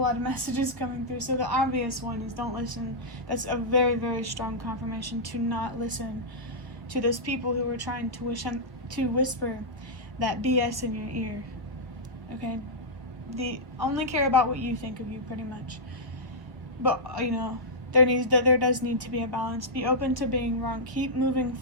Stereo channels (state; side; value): late; left; 1.0 ms